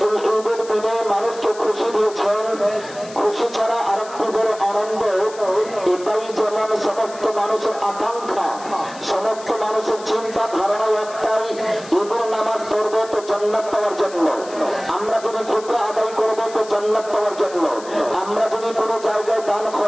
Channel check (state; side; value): noise; left; hiss, 18 dB below the sound